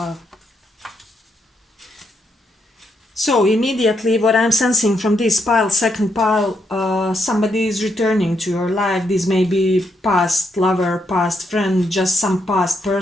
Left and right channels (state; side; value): normal; both; correlation 0.78